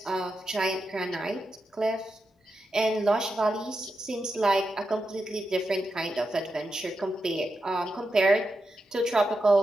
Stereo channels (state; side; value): normal; both; correlation 0.87